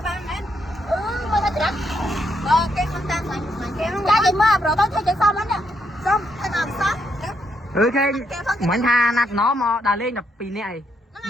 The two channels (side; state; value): both; normal; correlation 0.77